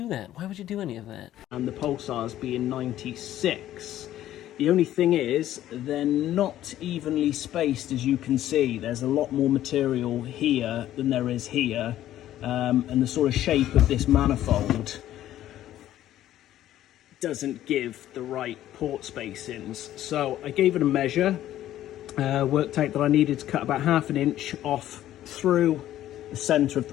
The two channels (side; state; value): right; quieter; 12.9 dB